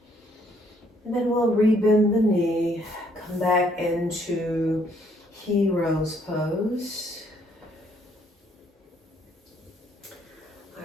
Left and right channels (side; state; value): both; normal; correlation 0.67